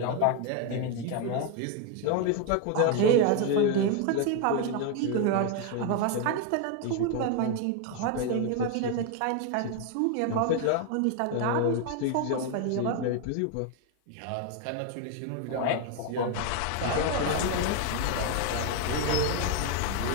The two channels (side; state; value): both; different; correlation 0.01